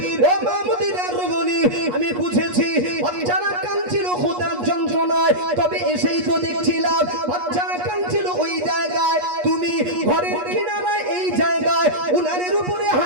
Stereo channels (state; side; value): late; left; 8.3 ms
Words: ও মা মদিনার রমণী, আমি বুঝেছি বাচ্চারা কাঁদছিল ক্ষুধার যন্ত্রণায়, তবে এসেই তো দেখছিলাম বাচ্চারা কাঁদছিল ওই জায়গায়, তুমি ঘরের কিনারায় এই জায়গায় উনারের উপরে